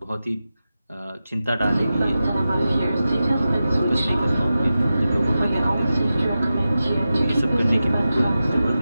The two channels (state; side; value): inverted; both; correlation -0.92